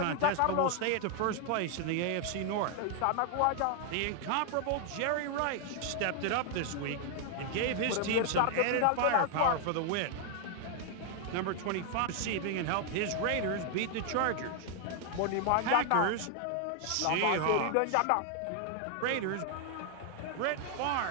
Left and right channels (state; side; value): different; both; correlation 0.00